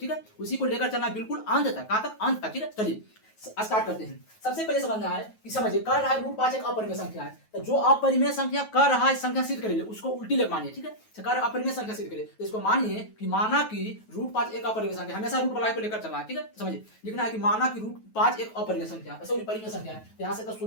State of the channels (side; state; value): right; late; 9.3 ms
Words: है, उसी को लेकर चलना है बिल्कुल अंत तक। कहां तक? अंत तक। ठीक है, चलिए स्टार्ट करते हैं। सबसे पहले समझना है कि समझिए कर रहा है रूट 5 एक अपरिमेय संख्या है। तो जो अपरिमेय संख्या कर रहा है संख्या सिद्ध करेंगे उसको उल्टी लेकर मानिए। ठीक है, कर अपरिमेय संख्या सिद्ध करे तो इसको मानिए कि माना कि रूट 5 एक अपरिमेय संख्या। हमेशा रूट वाला को लेकर चलना है। ठीक है, समझिए लिखना है कि माना कि रूट 5 एक अपरिमेय संख्या, सॉरी परिमेय संख्या है। यहां से तो